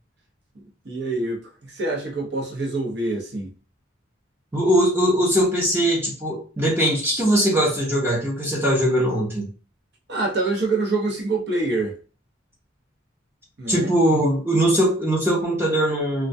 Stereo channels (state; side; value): normal; both; correlation 0.54